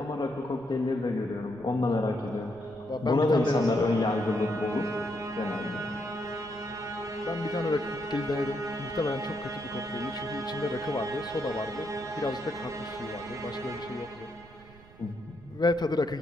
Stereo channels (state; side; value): noise; right; rumble, 22 dB below the sound